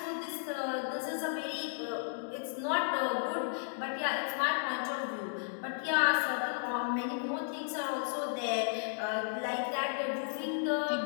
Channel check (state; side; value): silent; right; digital silence